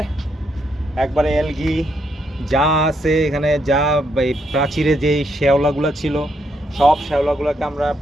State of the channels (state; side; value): normal; both; correlation 0.76